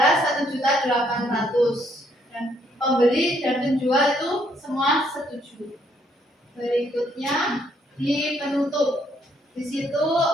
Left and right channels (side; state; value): both; normal; correlation 0.70